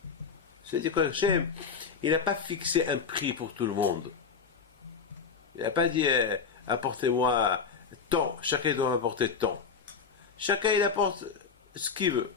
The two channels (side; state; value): right; quieter; 5.7 dB